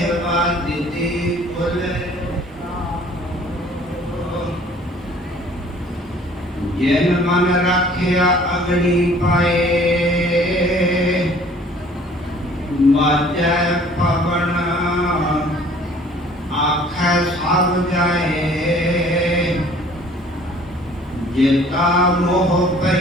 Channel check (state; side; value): normal; both; correlation 0.54